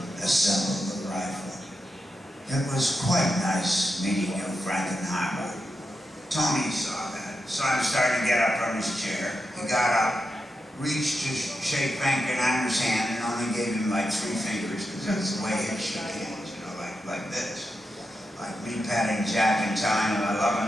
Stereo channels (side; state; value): both; normal; correlation 0.88